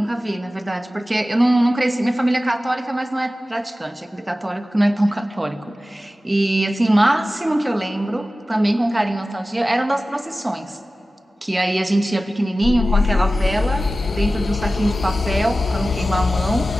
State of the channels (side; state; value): both; normal; correlation 0.95